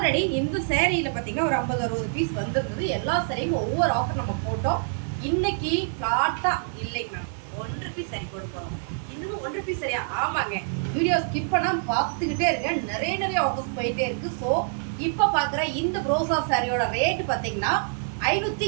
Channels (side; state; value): left; silent; digital silence